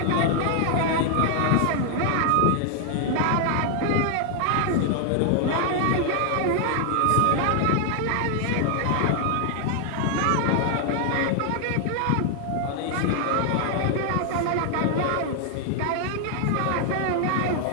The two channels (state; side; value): different; both; correlation 0.00